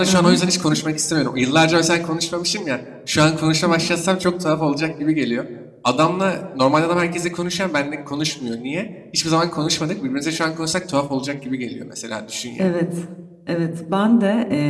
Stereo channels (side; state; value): both; identical; correlation 1.00